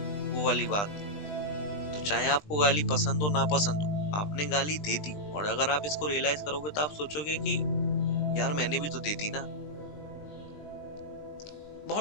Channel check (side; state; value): right; late; 20 ms